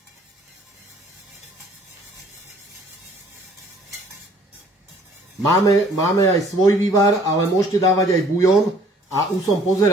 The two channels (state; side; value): normal; both; correlation 0.57